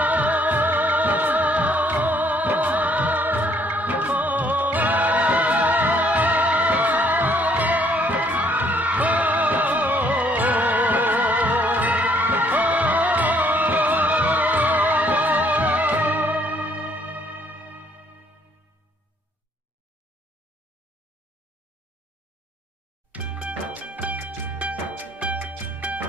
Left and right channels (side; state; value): both; normal; correlation 0.65